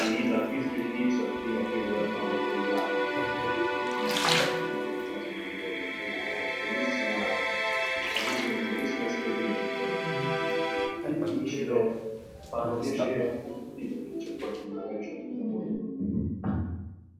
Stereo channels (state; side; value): identical; both; correlation 1.00